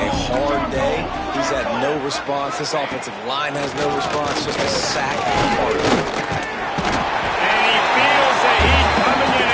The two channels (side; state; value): both; identical; correlation 1.00